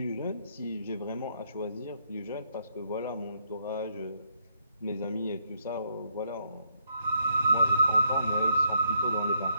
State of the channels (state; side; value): inverted; both; correlation -0.74